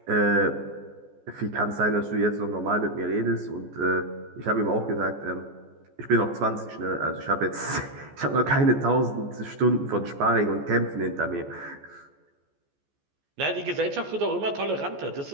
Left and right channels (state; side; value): late; left; 14 ms